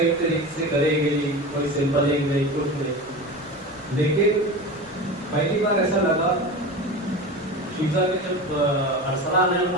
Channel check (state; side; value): noise; left; rumble, 24 dB below the sound